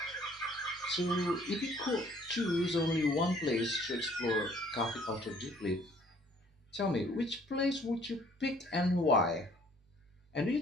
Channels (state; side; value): normal; both; correlation 0.58